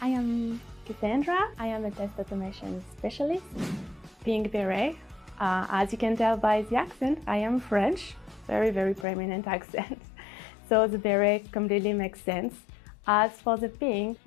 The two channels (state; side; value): drops out; right; at 9.1 s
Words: I am Cassandra. I am a test automation specialist. Pink beret. As you can tell by the accent, I am French. Very prominent accent. So the beret completely makes sense. As for the pink,